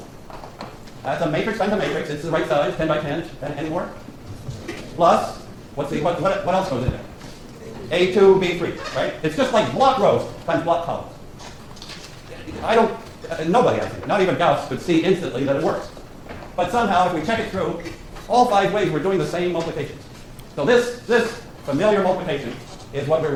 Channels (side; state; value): both; identical; correlation 1.00